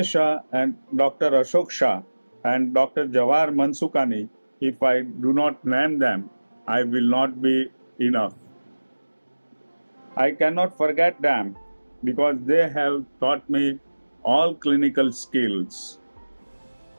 Shah and Dr. Ashok Shah and Dr. Jawahar Mansukani, if I do not name them, I will not be enough. I cannot forget them because they have taught me all clinical skills.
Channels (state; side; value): inverted; both; correlation -1.00